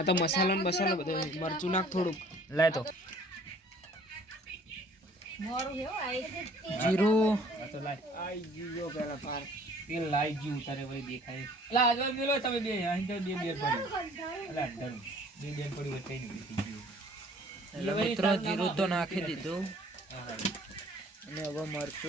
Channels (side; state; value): both; normal; correlation 0.54